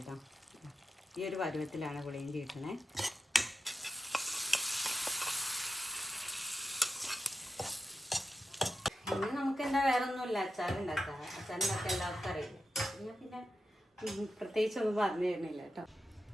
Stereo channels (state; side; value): normal; both; correlation 0.88